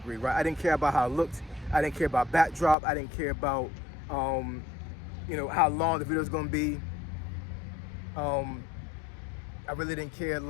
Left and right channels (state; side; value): drops out; right; at 2.8 s